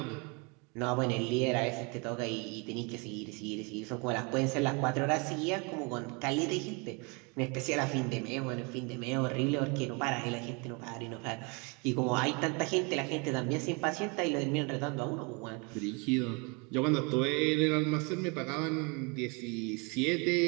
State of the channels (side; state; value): left; quieter; 31.1 dB